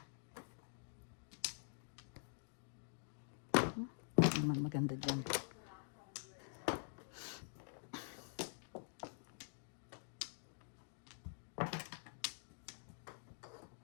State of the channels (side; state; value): right; silent; digital silence